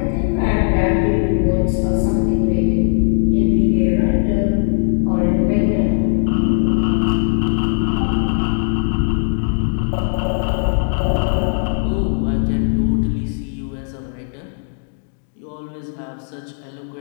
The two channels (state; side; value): silent; right; 67 dB below the other